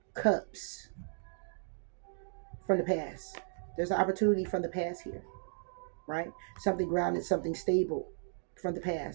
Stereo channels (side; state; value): left; silent; digital silence